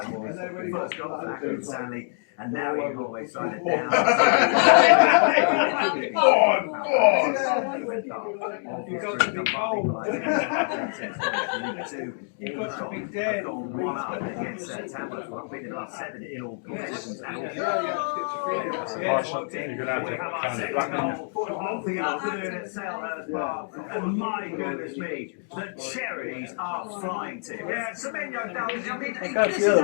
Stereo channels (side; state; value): right; silent; 61 dB below the other